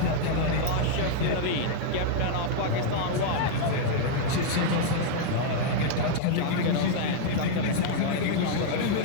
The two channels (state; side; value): different; both; correlation -0.01